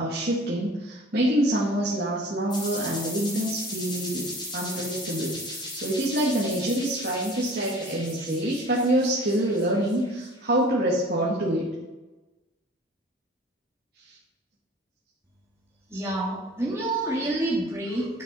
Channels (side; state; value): both; normal; correlation 0.45